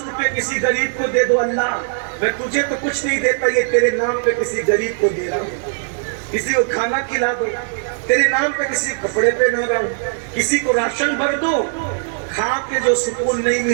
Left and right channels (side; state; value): left; silent; digital silence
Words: کسی غریب کو دے دو، اللہ میں تجھے تو کچھ نہیں دیتا، یہ تیرے نام پہ کسی غریب کو دے رہا ہوں. کسی کو کھانا کھلا دو، تیرے نام پہ کسی کپڑے پہ نہ رہا ہوں. کسی کو راشن بھر دو، کھا کے جو سکون نہیں